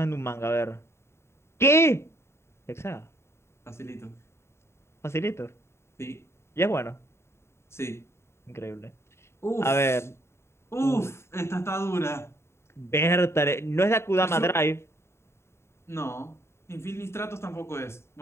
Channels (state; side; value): late; right; 0.13 ms